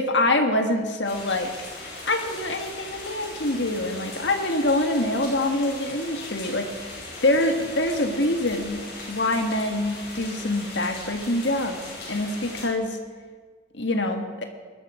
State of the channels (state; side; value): normal; both; correlation 0.08